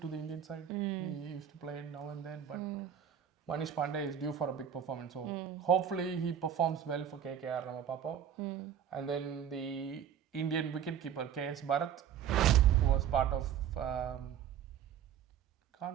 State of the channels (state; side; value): quieter; left; 8.9 dB